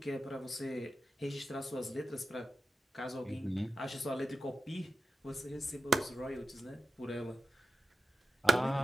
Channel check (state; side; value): normal; both; correlation 0.89